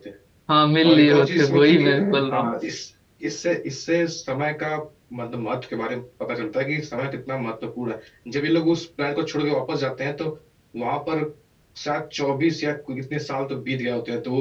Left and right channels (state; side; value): identical; both; correlation 1.00